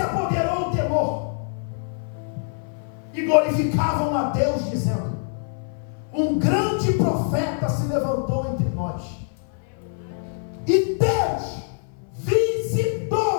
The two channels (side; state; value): right; silent; 57 dB below the other